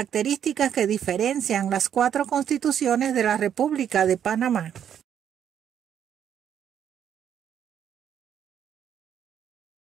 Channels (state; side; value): quieter; left; 9.2 dB